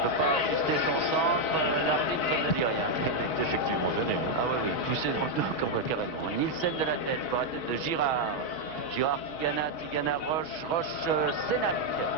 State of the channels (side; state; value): right; late; 6.2 ms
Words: ne peut pas ajuster son centre. L'arbitre ne dit rien. Il est effectivement gêné. Hein. Ah oui, poussé dans le dos carrément. Nielsen de la tête pour la tête de Girard. Girard, Tigana, Roche, Sénac.